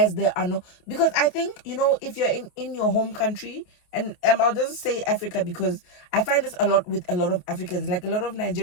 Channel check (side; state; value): right; late; 28 ms